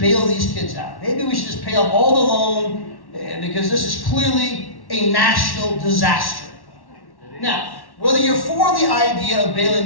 bail these kids out. Maybe we should just pay off all the loan because this is clearly a national disaster. Now, whether you're for the idea of bailing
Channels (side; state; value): right; late; 1.1 ms